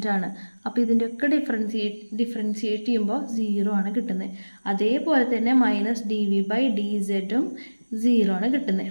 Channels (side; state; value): both; inverted; correlation -1.00